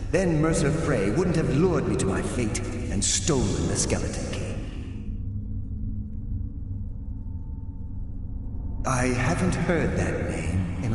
then Mercer Frey wouldn't have lured me to my fate and stolen the skeleton key. I haven't heard that name in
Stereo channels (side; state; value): both; identical; correlation 1.00